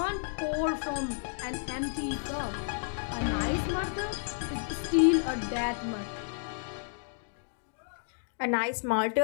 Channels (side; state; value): right; silent; digital silence